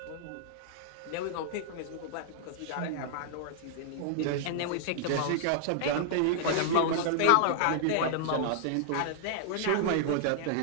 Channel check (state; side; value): different; both; correlation -0.01